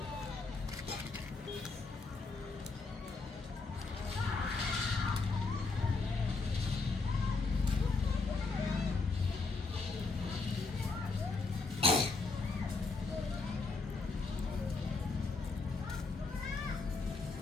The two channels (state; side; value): quieter; right; 4.0 dB